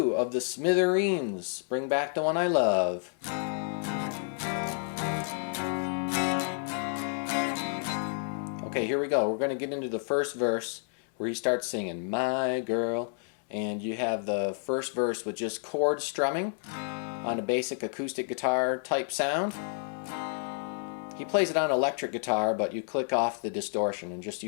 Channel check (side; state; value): right; silent; 58 dB below the other